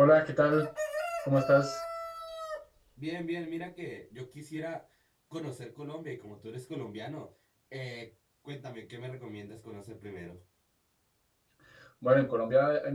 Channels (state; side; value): identical; both; correlation 1.00